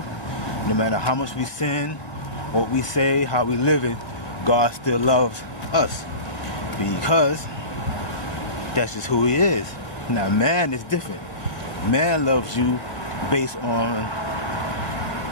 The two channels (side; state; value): right; late; 1.7 ms